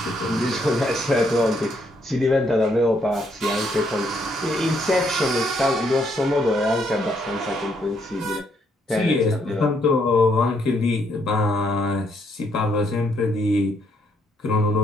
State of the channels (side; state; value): both; normal; correlation 0.72